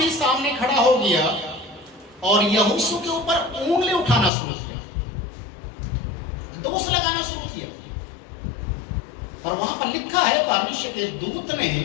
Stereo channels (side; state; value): right; drops out; at 4.3 s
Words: सामने खड़ा हो गया और यहोशू के ऊपर उंगली उठाना शुरू किया, दोष लगाना शुरू किया। और वहां पर लिखा है, परमेश्वर के दूत ने